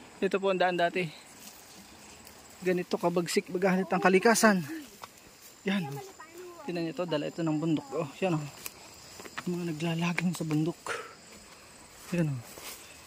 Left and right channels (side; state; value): both; identical; correlation 1.00